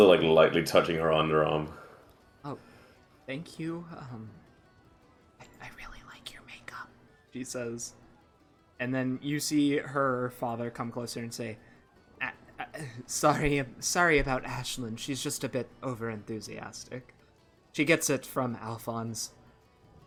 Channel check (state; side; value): identical; both; correlation 1.00